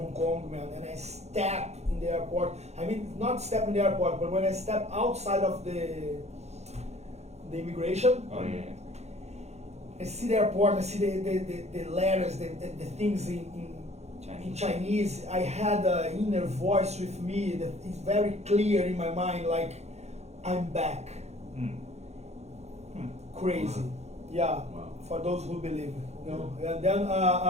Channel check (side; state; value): left; late; 0.32 ms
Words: Kong, man, and I stepped in the airport, I mean, not step in the airport, but when I stepped outside of the immigration, I see the airport, I see the letters, the things in Chinese. I had an inner voice with me that is very clear in my mind, like, I'm back. Crazy. Yeah. For those who believe, you know. And then